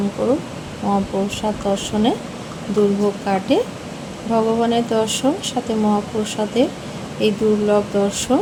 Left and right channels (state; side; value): identical; both; correlation 1.00